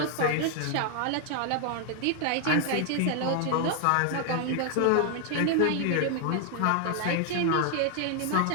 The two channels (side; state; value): both; different; correlation 0.00